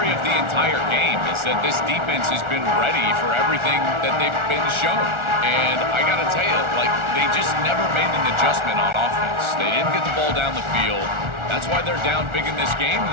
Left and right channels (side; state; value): left; late; 1.4 ms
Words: of the entire game, is that this defense has been ready for everything that they've been shown. And I got to tell you, like, they just never made an adjustment on offense. They didn't get the ball down the field. That's why they're down big in this game,